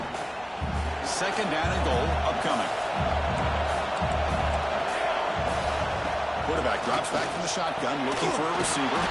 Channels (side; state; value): both; identical; correlation 1.00